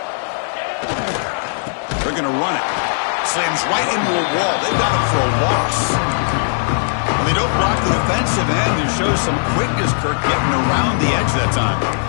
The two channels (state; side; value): silent; right; 67 dB below the other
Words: They're going to run it. Slams right into a wall. They've got him for a loss. When they don't block the defensive end, it shows some quickness, Kirk, getting around the edge that time.